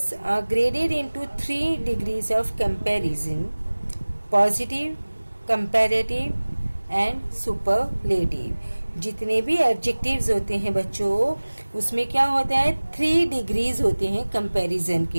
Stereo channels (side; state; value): both; inverted; correlation -1.00